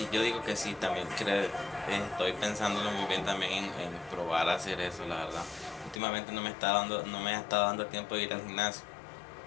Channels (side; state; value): right; drops out; at 6.0 s